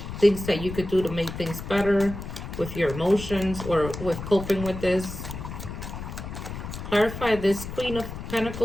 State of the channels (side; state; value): left; noise; rumble, 9 dB below the sound